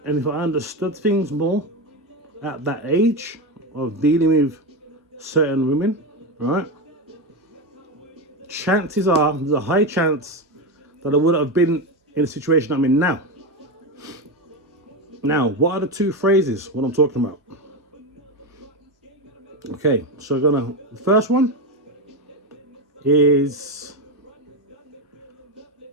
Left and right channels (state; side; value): normal; both; correlation 0.14